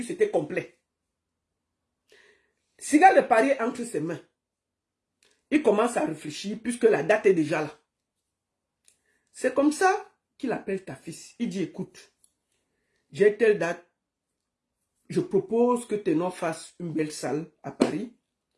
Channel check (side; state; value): both; identical; correlation 1.00